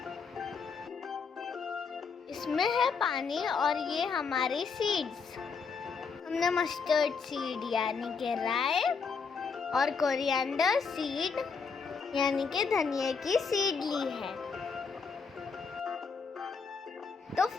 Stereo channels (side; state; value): right; quieter; 5.4 dB